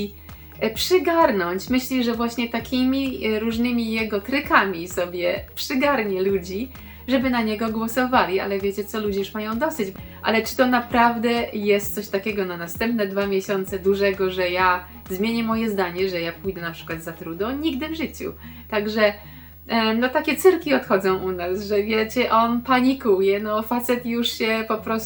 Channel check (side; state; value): both; identical; correlation 1.00